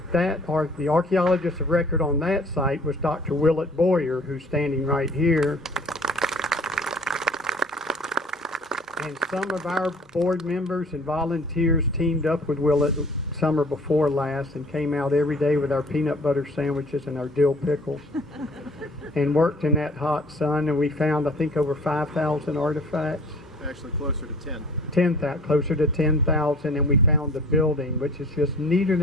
The archaeologist of record on that site was Dr. Willett Boyer, who's standing right here. And some of our board members and volunteers teamed up with Willett summer before last and came out every day with our peanut butter sandwiches and our dill pickles and worked in that hot sun, and we found, I think, over 5,000 artifacts. Actually closer to 10. Closer to 10,000, and we found the building, which is just neater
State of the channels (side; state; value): both; normal; correlation 0.50